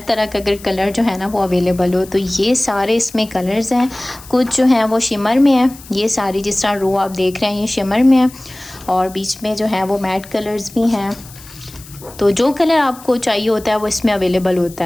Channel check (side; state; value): left; noise; hiss, 20 dB below the sound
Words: तरह का अगर कलर जो है ना वो अवेलेबल हो। तो ये सारे इसमें कलर्स हैं। कुछ जो हैं वो शिमर में है। ये सारी जिस तरह रो आप देख रहे हैं ये शिमर में है और बीच में जो है वो मैट कलर्स भी हैं। तो जो कलर आपको चाहिए होता है वो इसमें अवेलेबल होता